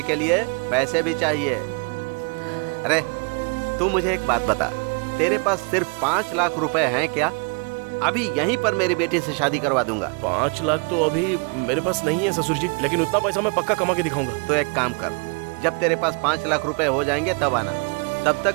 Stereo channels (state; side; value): quieter; left; 34.6 dB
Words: के लिए पैसे भी चाहिए। अरे तू मुझे एक बात बता, तेरे पास सिर्फ 5 लाख रुपए हैं क्या? अभी यहीं पर मेरी बेटी से शादी करवा दूंगा। 5 लाख तो अभी मेरे पास नहीं है ससुर जी, लेकिन उतना पैसा मैं पक्का कमा के दिखाऊंगा। तो एक काम कर, जब तेरे पास 5 लाख रुपए हो जाएंगे तब आना, तब तक